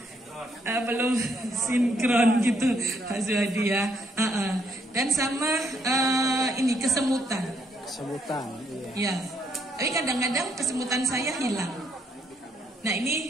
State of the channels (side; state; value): both; normal; correlation 0.72